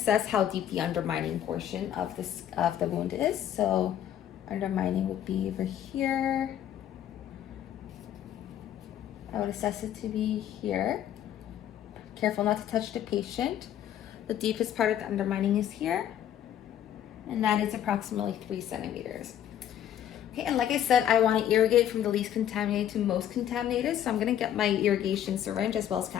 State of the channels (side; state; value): right; quieter; 10.7 dB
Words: how deep the undermining portion of the wound is. So undermining would be over here. I would assess it to be here. Careful not to touch the patient. The deepest part of the undermining is here. And that is approximately 3 centimeters. Okay, and like I said, I want to irrigate from the least contaminated to most contaminated. So I'm gonna get my irrigation syringe as well as